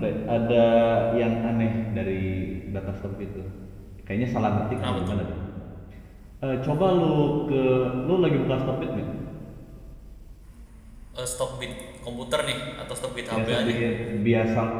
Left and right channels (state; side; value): identical; both; correlation 1.00